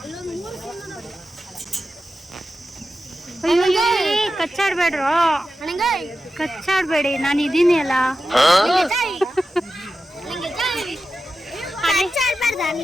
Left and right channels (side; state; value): both; normal; correlation 0.92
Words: ಕಚ್ಚಾಡ್ಬೇಡ್ರು, ಕಚ್ಚಾಡ್ಬೇಡಿ, ನಾನು ಇದೀನಿ ಅಲ್ಲ.